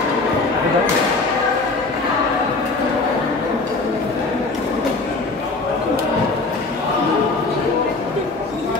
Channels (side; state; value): right; quieter; 3.5 dB